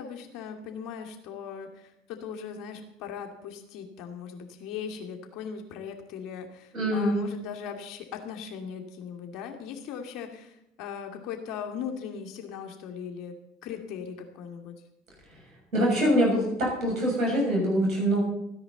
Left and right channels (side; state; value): both; normal; correlation 0.52